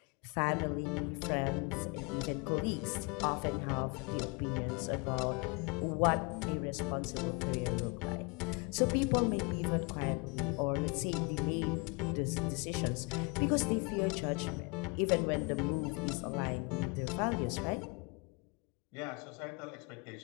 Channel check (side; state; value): right; quieter; 30.5 dB